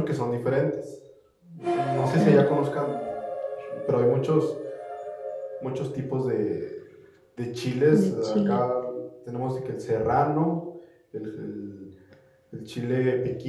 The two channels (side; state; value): both; identical; correlation 1.00